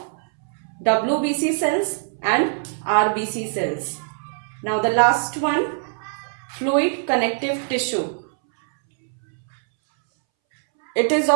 WBC cells and RBC cells. Now the last one, fluid connective tissue. It is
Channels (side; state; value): left; silent; 64 dB below the other